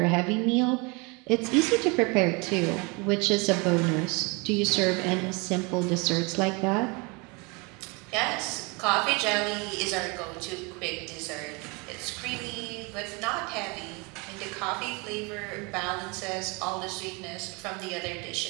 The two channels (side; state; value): left; quieter; 29.1 dB